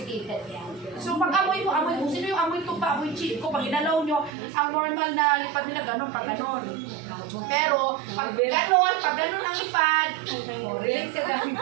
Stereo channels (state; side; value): drops out; left; at 4.3 s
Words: yan. So pag amoy mo, sino yung amoy tuba, amoy chico, pag inalaw nyo, ang normal na lipad nila ganun, pag ganun. Pero pag ganun ang lipad, relate ka ganun.